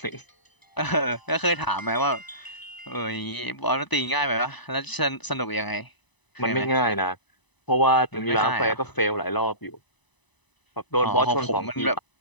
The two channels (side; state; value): right; late; 1.0 ms